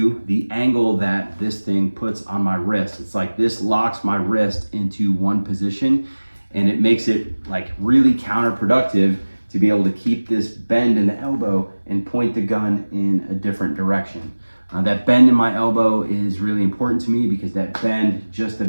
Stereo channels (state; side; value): inverted; both; correlation -1.00